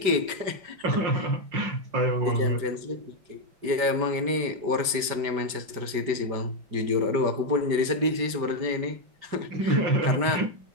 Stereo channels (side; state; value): left; late; 5.1 ms